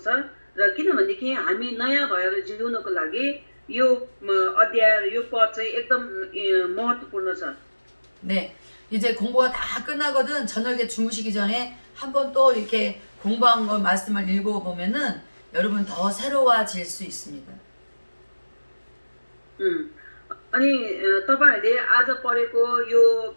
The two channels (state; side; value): inverted; both; correlation -1.00